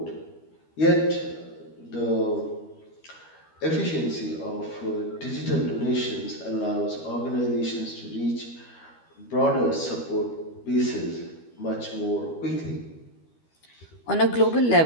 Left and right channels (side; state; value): right; late; 13 ms